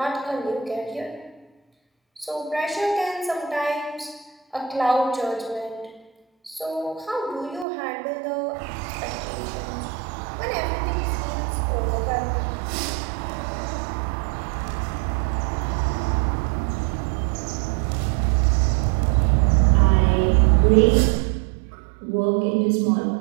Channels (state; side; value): drops out; left; at 7.7 s